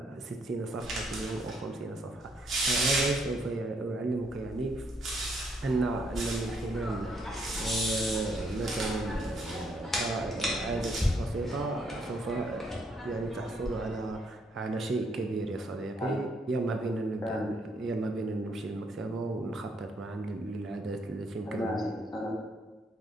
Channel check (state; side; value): normal; both; correlation 0.71